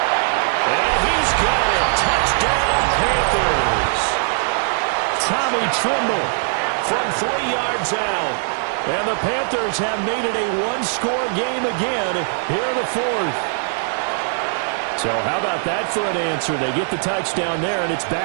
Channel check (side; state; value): left; silent; digital silence